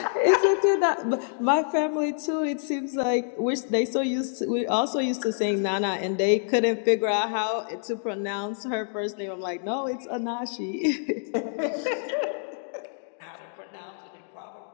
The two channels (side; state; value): right; silent; digital silence